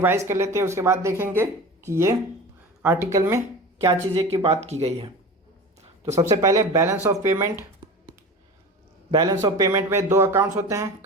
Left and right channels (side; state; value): both; normal; correlation 0.33